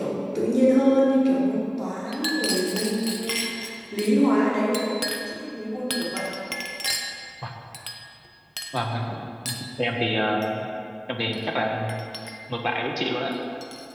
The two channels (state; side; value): identical; both; correlation 1.00